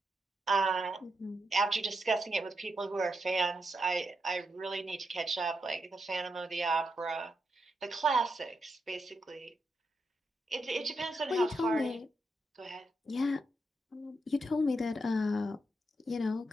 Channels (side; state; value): both; normal; correlation 0.84